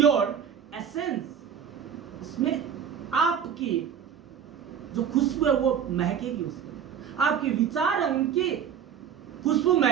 essence. इसमें आपकी जो खुशबू है वो महकेगी, उसमें आपके विचार है उनकी खुशबू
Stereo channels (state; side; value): quieter; left; 8.1 dB